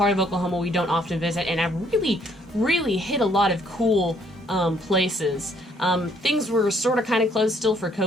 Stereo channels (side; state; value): both; normal; correlation 0.66